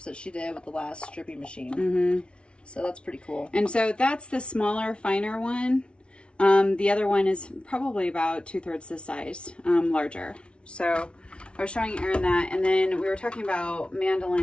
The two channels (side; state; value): right; late; 0.058 ms